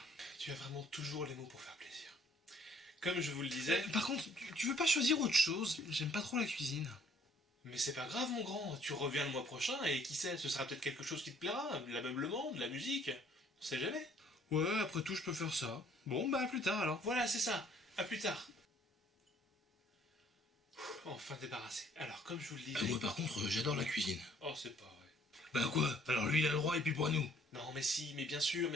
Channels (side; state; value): both; normal; correlation 0.61